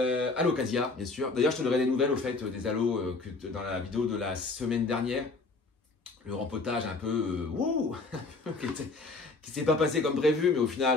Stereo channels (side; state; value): right; quieter; 3.6 dB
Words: bien sûr. D'ailleurs, je te donnerai des nouvelles au fait des aloes dans la vidéo de la semaine dernière. Le rempotage un peu qui s'est pas passé comme prévu, mais au